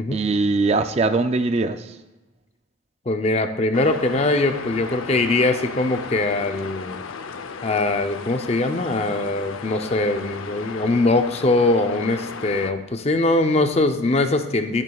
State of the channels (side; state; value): both; normal; correlation 0.41